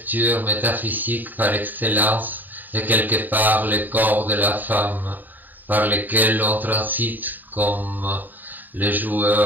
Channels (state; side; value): late; left; 0.086 ms